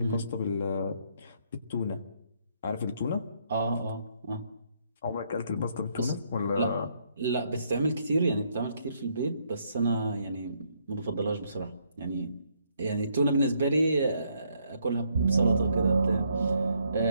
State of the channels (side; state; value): both; inverted; correlation -0.72